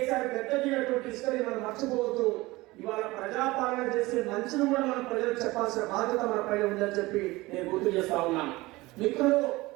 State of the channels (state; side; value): quieter; left; 20.7 dB